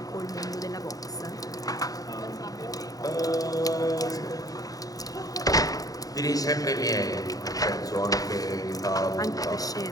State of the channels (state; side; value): late; right; 0.18 ms